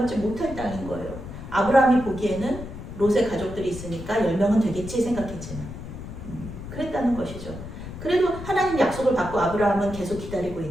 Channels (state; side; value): noise; left; rumble, 11 dB below the sound